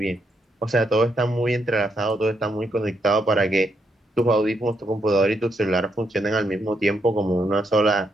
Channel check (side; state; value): both; normal; correlation 0.77